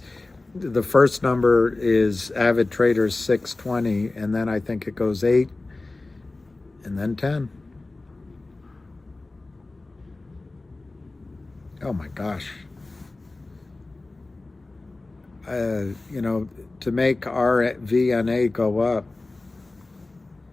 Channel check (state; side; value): quieter; right; 3.2 dB